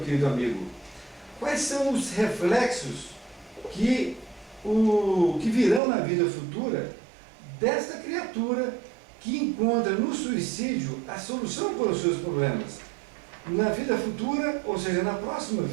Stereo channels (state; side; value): drops out; left; at 5.8 s